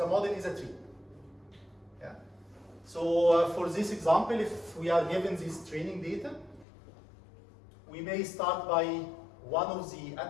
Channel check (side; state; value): right; drops out; at 6.7 s